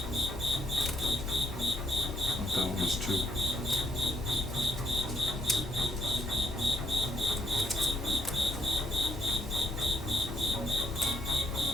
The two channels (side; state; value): both; normal; correlation 0.72